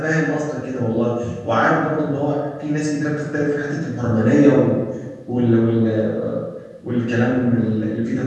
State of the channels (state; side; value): identical; both; correlation 1.00